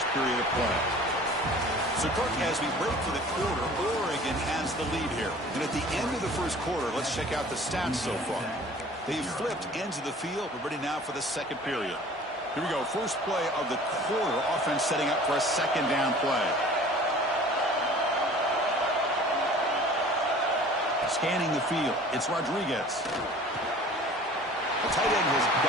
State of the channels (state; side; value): normal; both; correlation 0.46